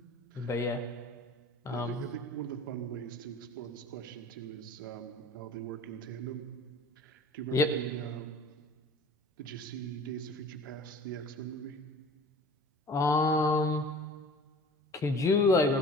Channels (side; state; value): both; normal; correlation 0.43